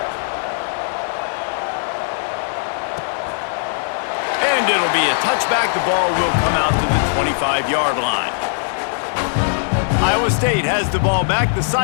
And it'll be a touchback. The ball will come out to the 25-yard line. Iowa State has the ball back. The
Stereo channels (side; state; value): right; silent; 66 dB below the other